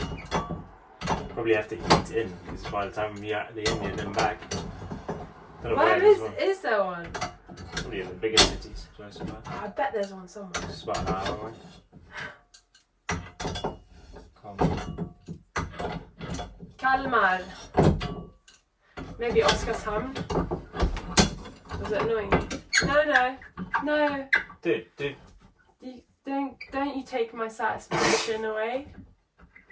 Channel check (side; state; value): both; identical; correlation 1.00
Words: Probably have to eat in because by the time we are the Indian and back, don't know Where where it is. is there one? Probably in the bigger cities, close by. I bet there's one somewhere. It's about an hour away. Come. Kalmar. Maybe Oskarshamn. Was it annoying me? No. Dude. Don't you take my satisfaction away.